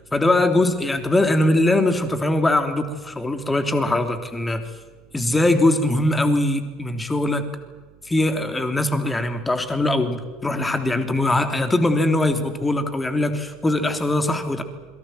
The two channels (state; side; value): noise; right; hum, 28 dB below the sound